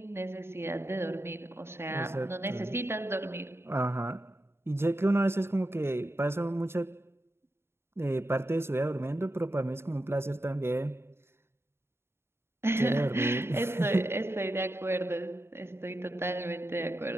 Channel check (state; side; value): late; left; 0.12 ms